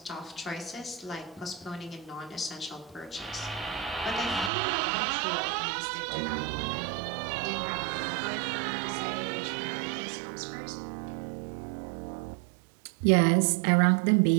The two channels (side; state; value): left; drops out; at 4.5 s